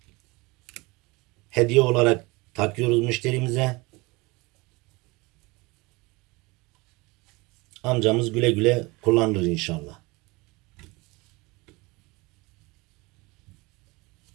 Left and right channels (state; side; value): quieter; left; 24.2 dB